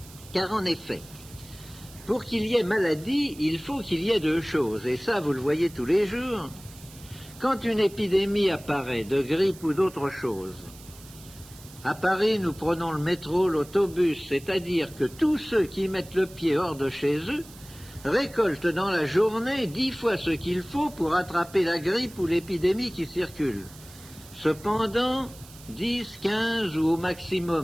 Car en effet, pour qu'il y ait maladie, il faut qu'il y ait deux choses, et ça vous le voyez tous les jours. Quand une épidémie apparaît, de grippe ou d'autre chose, à Paris, nous prenons le métro, l'autobus, c'est-à-dire que tous ceux qui mettent le pied hors de chez eux récoltent dans la journée 10 fois ce qu'il faut pour attraper la grippe ou l'épidémie qui circule. Cependant, 10, 15 ou au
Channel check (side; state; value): right; noise; hiss, 20 dB below the sound